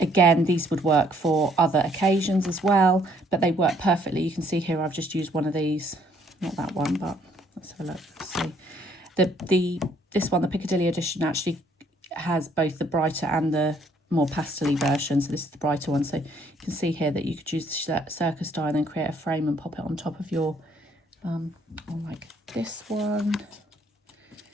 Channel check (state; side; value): normal; both; correlation 0.65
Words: these would work for other occasions as well, but they work perfectly. You can see here I've just used one of these, not that one, but Let's have a look. See, this one, the Piccadilly edition, actually has both the brighter and the more pastel-y version. So this is the brighter one. So you can see here that you could use the Circus die and then create a frame and pop it on top of your, or like this one.